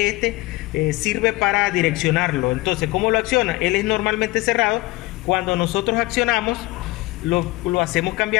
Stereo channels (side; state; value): right; quieter; 20.5 dB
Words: este, sirve para direccionarlo. Entonces, ¿cómo lo acciona? Él es normalmente cerrado. Cuando nosotros accionamos, lo hacemos